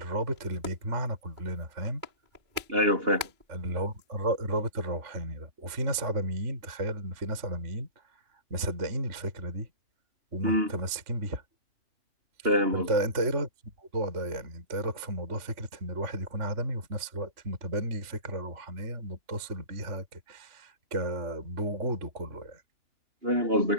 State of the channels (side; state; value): left; late; 3.5 ms